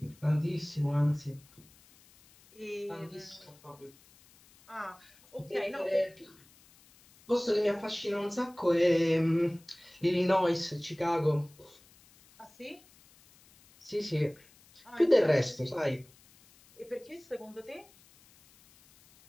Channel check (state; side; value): noise; left; hiss, 27 dB below the sound